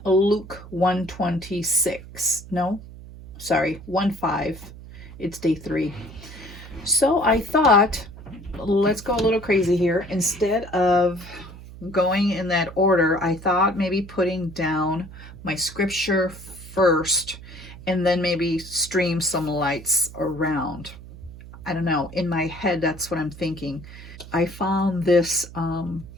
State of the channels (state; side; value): noise; right; hum, 16 dB below the sound